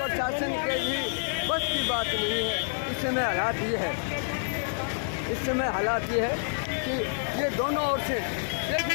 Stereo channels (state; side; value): silent; right; digital silence